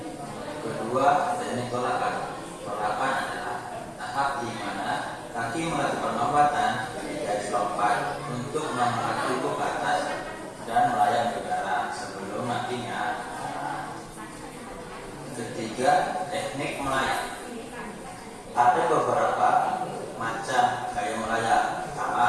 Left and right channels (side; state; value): both; identical; correlation 1.00